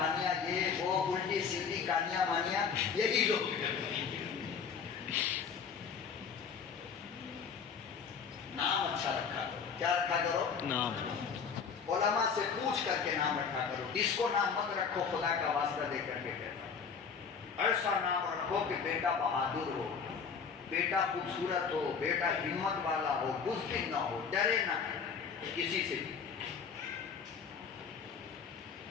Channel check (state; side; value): quieter; right; 6.2 dB